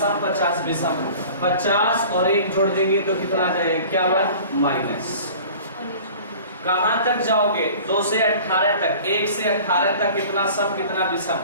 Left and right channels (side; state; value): both; inverted; correlation -0.44